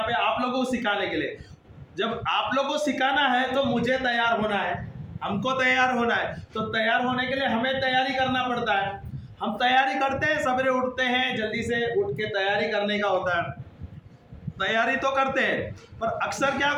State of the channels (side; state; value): both; identical; correlation 1.00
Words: पे आप लोगों को सिखाने के लिए। जब आप लोगों को सिखाना है तो मुझे तैयार होना है, हमको तैयार होना है। तो तैयार होने के लिए हमें तैयारी करना पड़ता है। हम तैयारी करते हैं, सवेरे उठते हैं, जल्दी से उठ के तैयारी करने का होता है। तैयारी तो करते हैं, पर अक्सर क्या